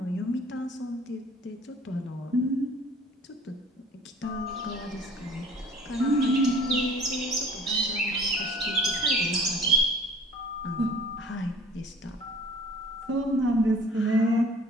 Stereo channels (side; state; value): both; normal; correlation 0.49